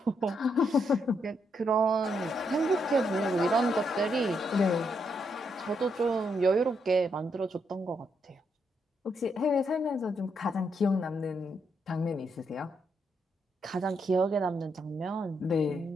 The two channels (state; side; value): normal; both; correlation 0.78